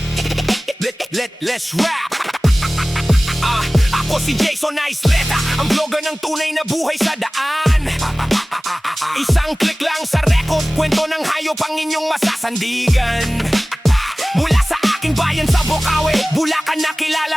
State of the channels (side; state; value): both; normal; correlation 0.98